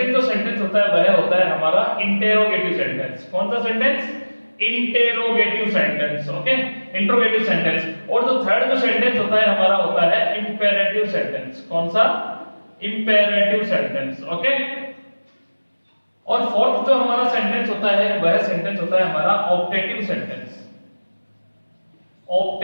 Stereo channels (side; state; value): both; inverted; correlation -1.00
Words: जो सेंटेंस होता है वह होता है हमारा इंटेरोगेटिव सेंटेंस। कौन सा sentence? Interrogative sentence. Okay, interrogative sentence. और जो थर्ड जो सेंटेंस होता है हमारा होता है इंपेरेटिव सेंटेंस। कौन सा? Imperative sentence. ओके, और फोर्थ जो हमारा सेंटेंस होता है वह सेंटेंस होता है हमारा optative sentence.